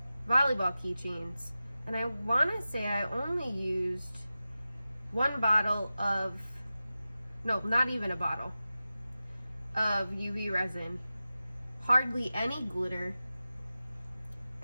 keychains. And I want to say I only used one bottle of, no, not even a bottle of UV resin, hardly any glitter,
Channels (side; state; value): both; inverted; correlation -0.94